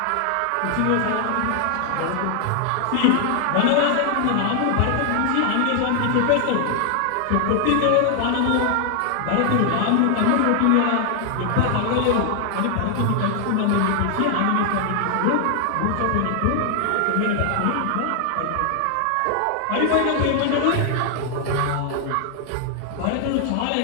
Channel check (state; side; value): different; both; correlation 0.00